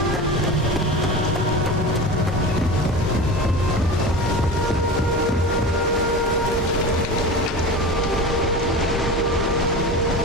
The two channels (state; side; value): normal; both; correlation 0.30